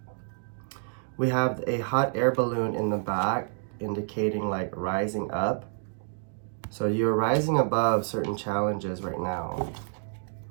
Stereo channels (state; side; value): silent; left; digital silence